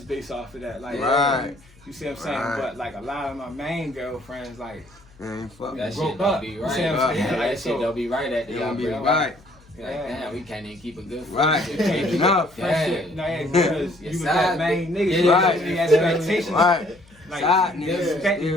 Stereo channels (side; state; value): left; noise; hum, 27 dB below the sound